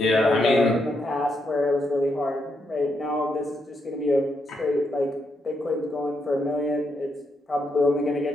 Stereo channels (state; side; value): normal; both; correlation 0.80